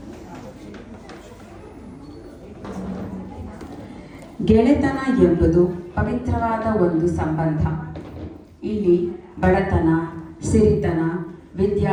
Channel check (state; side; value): identical; both; correlation 1.00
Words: ಗೆಳೆತನ ಎಂಬುದು ಪವಿತ್ರವಾದ ಒಂದು ಸಂಬಂಧ. ಇಲ್ಲಿ ಬಡತನ, ಸಿರಿತನ,